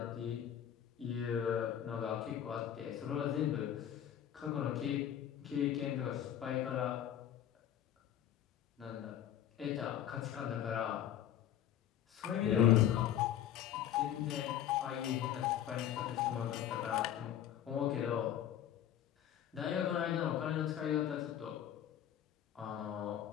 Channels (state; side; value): quieter; right; 10.6 dB